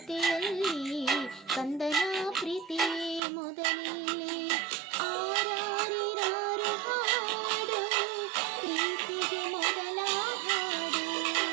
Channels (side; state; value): left; drops out; at 3.2 s